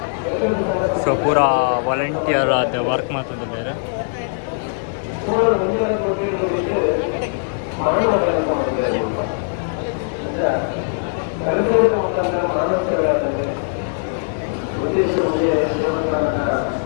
ಸೊ ಪೂರಾ ವಾಲಂಟಿಯರ್ ಆದ ವರ್ಕ್ ಮಾಡ್ತದೆ ಬೇರೆ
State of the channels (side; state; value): right; silent; digital silence